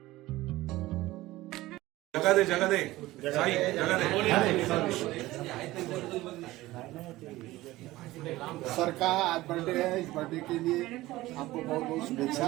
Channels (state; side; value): quieter; left; 17.7 dB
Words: जगा दे साई, जगा दे. सर का आज बर्थडे है, इस बर्थडे के लिए आपको बहुत बहुत